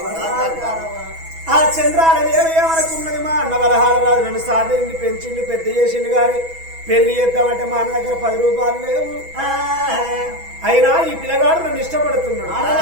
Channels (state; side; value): late; left; 6.1 ms